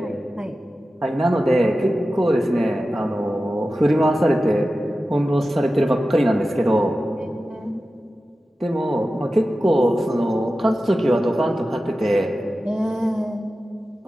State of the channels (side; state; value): both; normal; correlation 0.94